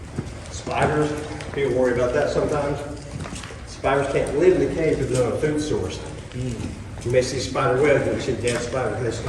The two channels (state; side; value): identical; both; correlation 1.00